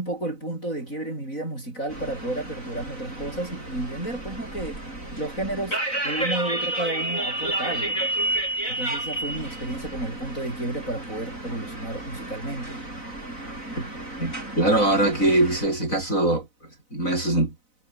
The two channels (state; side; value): late; right; 4.0 ms